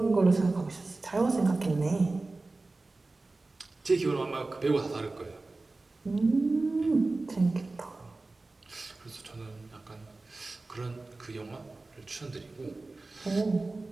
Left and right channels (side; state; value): left; quieter; 3.3 dB